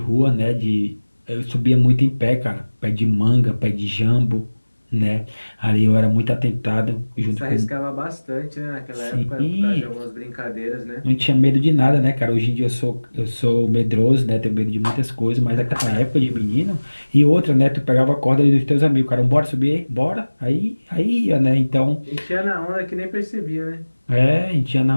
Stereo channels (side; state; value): both; inverted; correlation -1.00